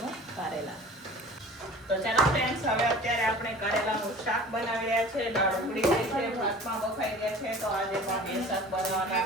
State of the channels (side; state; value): both; normal; correlation 0.43